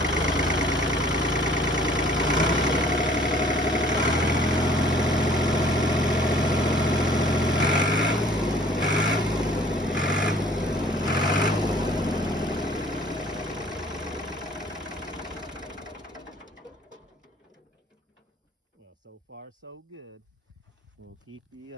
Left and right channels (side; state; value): both; normal; correlation 0.55